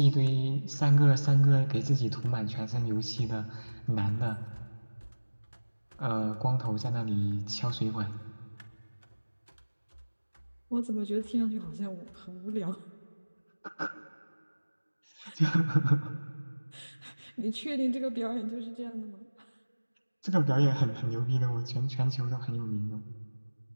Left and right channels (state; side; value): inverted; both; correlation -1.00